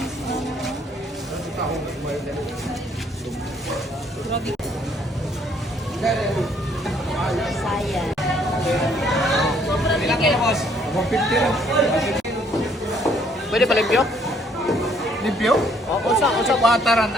Grabe. Saya. Ilang kilo, boss? 150 lang. Pwede pa limpyo? Limpyo? Oo, sa wataran.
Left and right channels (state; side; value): normal; both; correlation 0.65